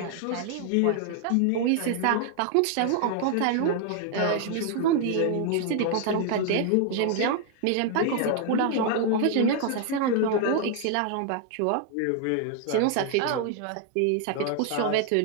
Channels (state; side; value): different; both; correlation 0.00